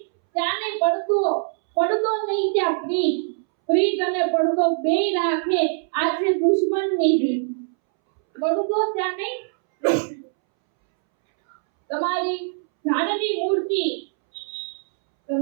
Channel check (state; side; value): silent; left; 64 dB below the other